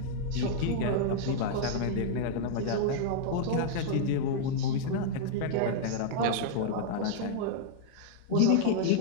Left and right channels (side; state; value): both; different; correlation -0.02